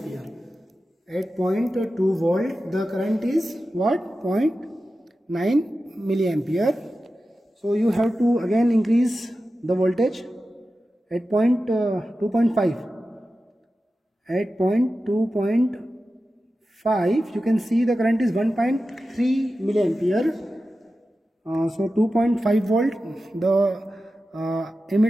At 0.2 volt, the current is what? 0.9 milliampere. So you have to again increase the voltage at 2.5. At 2.5, you can see the current is 1.3 milliampere. So 2.5 volt, the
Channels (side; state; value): both; normal; correlation 0.93